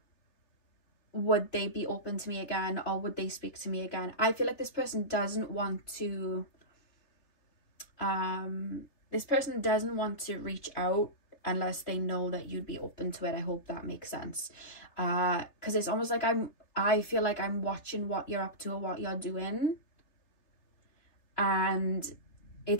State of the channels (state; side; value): late; right; 3.3 ms